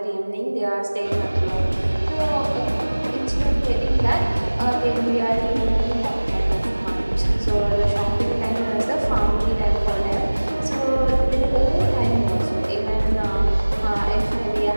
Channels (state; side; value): inverted; both; correlation -1.00